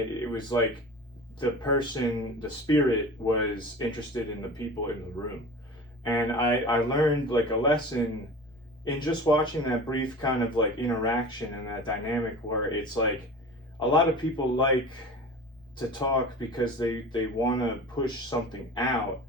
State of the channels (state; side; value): normal; both; correlation 0.36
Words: was like the spirit was interested in the people in the room. And I learned like a lesson in just watching that brief kind of like interaction and that dynamic, where it's like a lot of people like to talk because they want to push something out